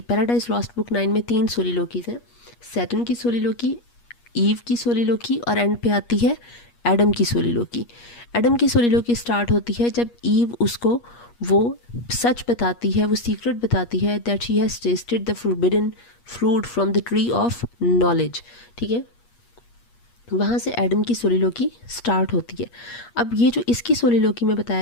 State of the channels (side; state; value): right; late; 8.4 ms